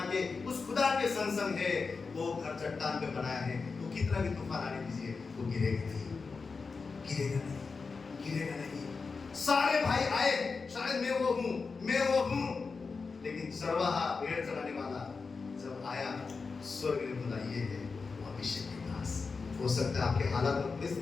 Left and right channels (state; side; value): quieter; right; 4.6 dB